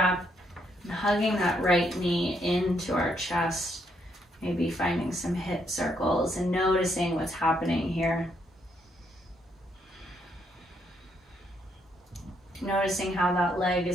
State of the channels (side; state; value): both; normal; correlation 0.74